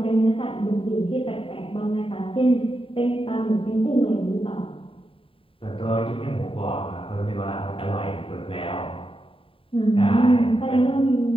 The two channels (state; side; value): late; right; 0.26 ms